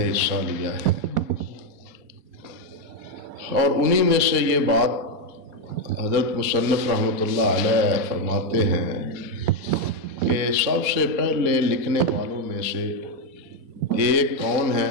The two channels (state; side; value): late; left; 4.2 ms